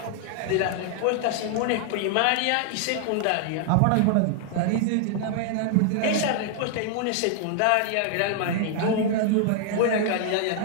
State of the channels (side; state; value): both; different; correlation 0.00